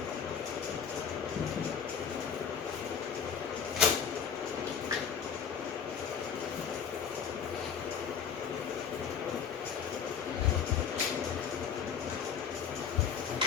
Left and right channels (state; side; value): quieter; right; 7.3 dB